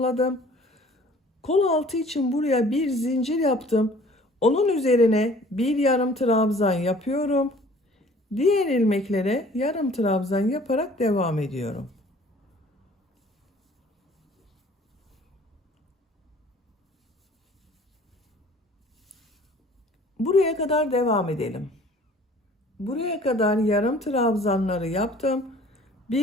Kol altı için buraya bir zincir yaptım. Onun üzerine bir yarım trabzan yapıyorum. Diğer ilmeklere yarım trabzan yaparak devam ediyorum. Buraya kadar devam edelim. Buraya kadar yarım trabzanları yaptım.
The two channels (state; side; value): normal; both; correlation 0.52